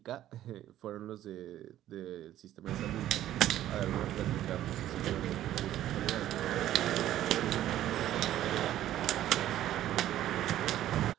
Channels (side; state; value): left; quieter; 12.8 dB